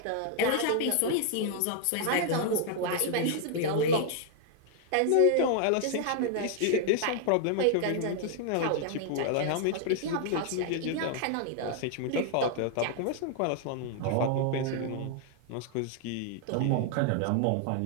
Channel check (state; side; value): different; both; correlation 0.00